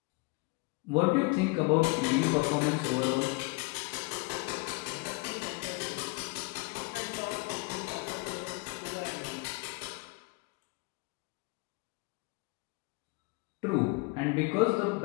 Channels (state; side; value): quieter; right; 26.9 dB